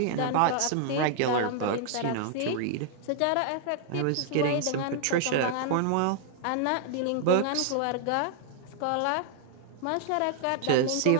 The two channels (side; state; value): both; different; correlation 0.00